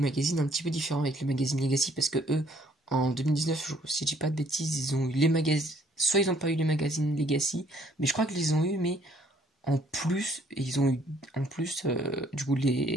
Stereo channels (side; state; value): both; normal; correlation 0.63